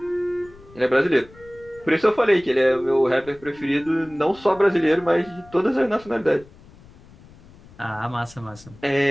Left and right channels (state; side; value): noise; left; rumble, 24 dB below the sound